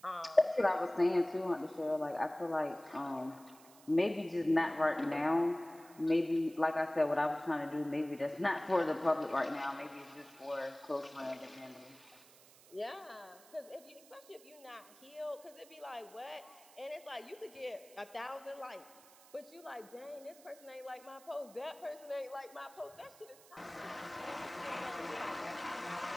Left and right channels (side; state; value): right; noise; hiss, 23 dB below the sound